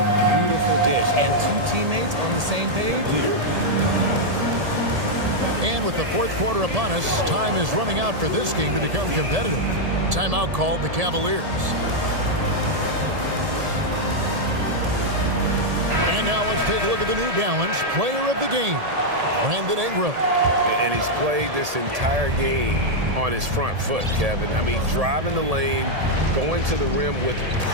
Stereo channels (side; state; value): left; late; 1.7 ms